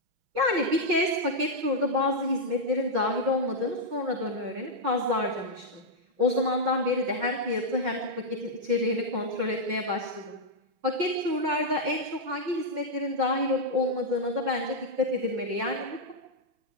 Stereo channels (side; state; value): left; late; 6.3 ms